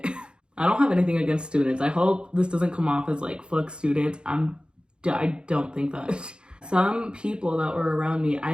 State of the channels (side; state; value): left; late; 0.052 ms